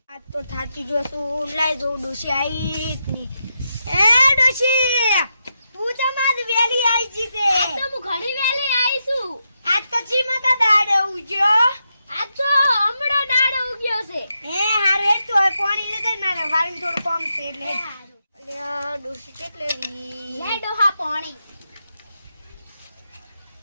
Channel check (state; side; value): inverted; both; correlation -0.85